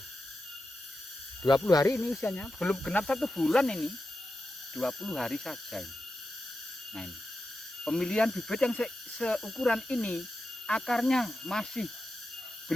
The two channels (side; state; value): both; normal; correlation 0.90